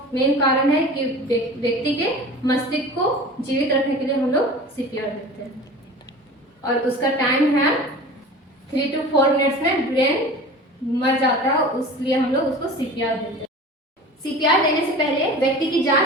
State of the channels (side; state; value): both; normal; correlation 0.37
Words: मेन कारण है कि व्यक्ति के मस्तिष्क को जीवित रखने के लिए हम लोग सीपीआर देते हैं और उसका टाइम है 3 to 4 मिनट्स में ब्रेन मर जाता है, इसलिए हम लोग उसको सीपीआर देते हैं। सीपीआर देने से पहले व्यक्ति की